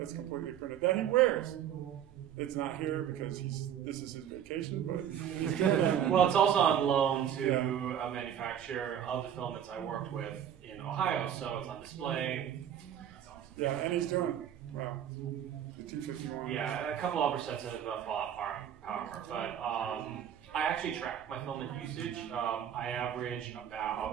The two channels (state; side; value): quieter; left; 9.7 dB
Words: completely printed that he wears. It's not here because this is his vacation, but he's doing it. Well, it's also on loan to a manufacturer of the filaments I worked with in Ohio, so it's on display. Yeah, and he's doing it. Wow. The T51. Yeah, a couple other sets of Fallout power, but I actually track my filament usage. I average